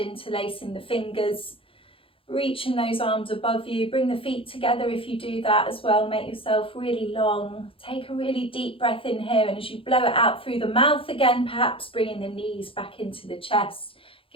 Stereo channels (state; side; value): late; right; 0.26 ms